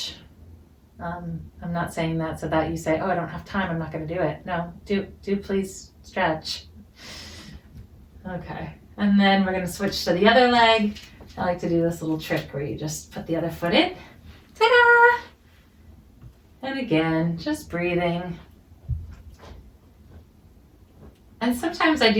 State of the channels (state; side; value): identical; both; correlation 1.00